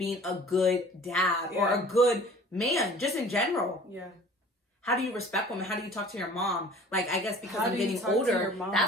a good dad or a good man, just in general. Yeah. How do you respect women? How do you talk to your mom? Like, I guess because I'm getting older,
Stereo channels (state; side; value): normal; both; correlation 0.47